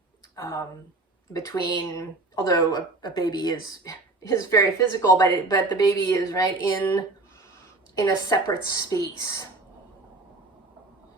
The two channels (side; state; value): left; quieter; 3.2 dB